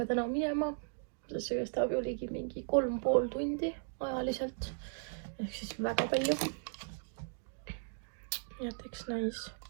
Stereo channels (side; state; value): left; silent; digital silence